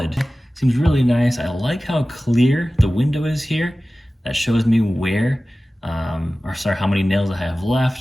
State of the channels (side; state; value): both; normal; correlation 0.96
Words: seems really nice. I like how clear the window is here. That shows me where, how many nails I have